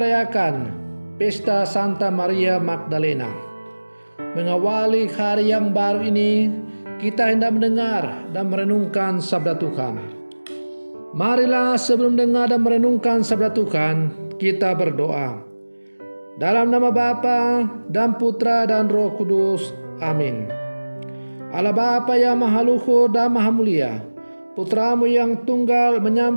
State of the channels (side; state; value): both; inverted; correlation -1.00